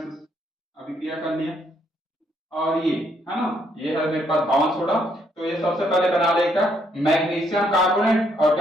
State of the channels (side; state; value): both; normal; correlation 0.72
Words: अभिक्रिया कर लिया। और ये है ना, ये है मेरे पास धावन सोडा। तो ये सबसे पहले बना लेगा मैग्नीशियम कार्बोनेट और